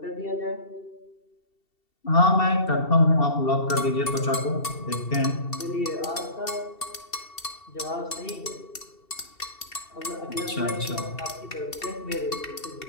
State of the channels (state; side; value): late; right; 2.7 ms